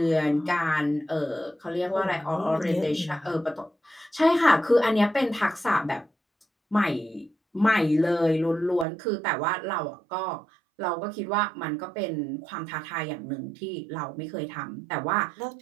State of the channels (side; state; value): left; drops out; at 8.8 s